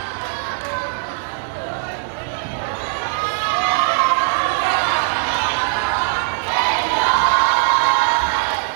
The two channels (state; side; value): silent; left; 64 dB below the other